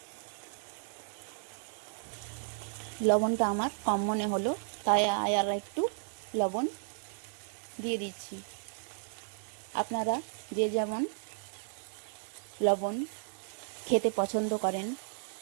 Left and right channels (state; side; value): silent; left; digital silence